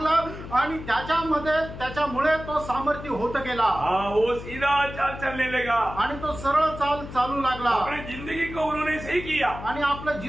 आणि त्याच्यामुळे तो सामर्थ्य होत गेला. वो सीधा चाल चलने लगा. आणि तो सरळ चाल चालू लागला. अपनी जिंदगी को उन्होंने सही किया. आणि आपलं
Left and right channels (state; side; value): noise; left; hum, 12 dB below the sound